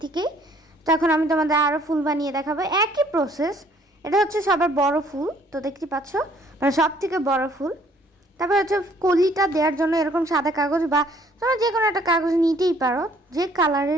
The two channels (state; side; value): normal; both; correlation 0.61